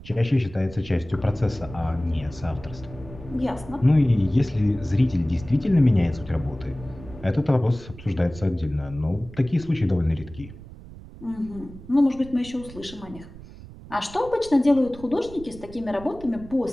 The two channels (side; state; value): right; noise; rumble, 17 dB below the sound